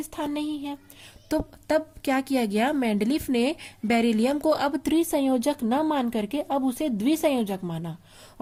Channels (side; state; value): both; identical; correlation 1.00